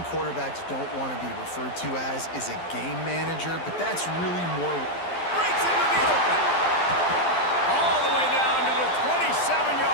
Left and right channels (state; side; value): late; right; 12 ms